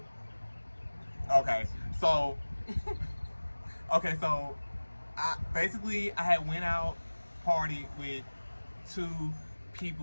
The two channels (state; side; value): inverted; both; correlation -1.00